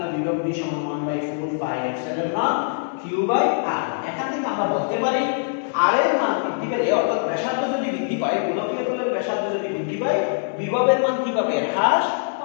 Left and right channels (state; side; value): silent; right; digital silence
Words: বিভব V সমান 1/4 pi epsilon nought q by r। এখান থেকে আমরা বলতে পারি r এর মান বৃদ্ধি পেলে, অর্থাৎ ব্যাসার্ধ যদি বৃদ্ধি পায়, গোলকীয় তলের ব্যাসার্ধ যদি বৃদ্ধি পায়, বিভবের মান কি পাবে? হ্রাস